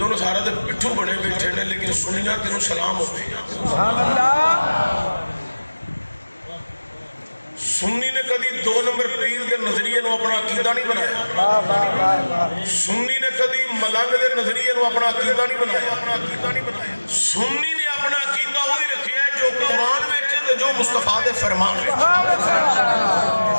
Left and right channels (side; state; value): both; inverted; correlation -1.00